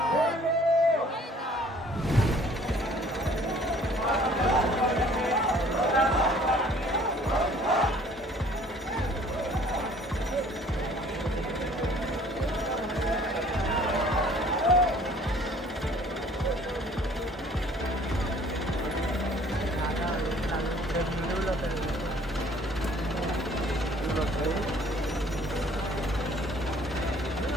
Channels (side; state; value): both; normal; correlation 0.55